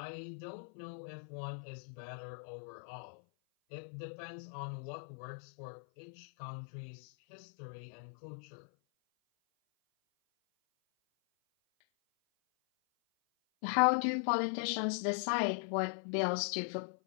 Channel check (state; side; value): silent; right; 51 dB below the other